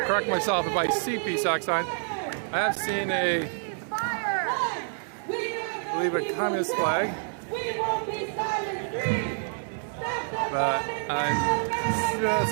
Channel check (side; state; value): left; silent; digital silence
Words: correct myself if I see PSAC sign. I have seen I believe a communist flag, but I'm